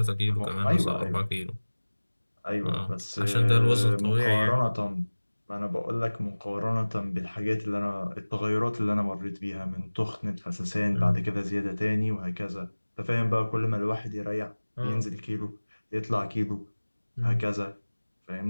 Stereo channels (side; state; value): both; inverted; correlation -1.00